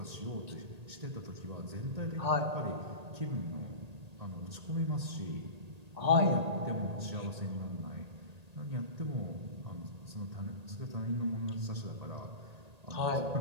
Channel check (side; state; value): left; late; 1.8 ms